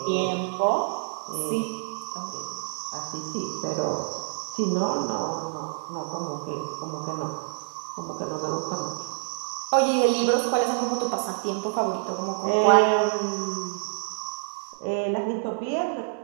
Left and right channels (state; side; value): silent; left; digital silence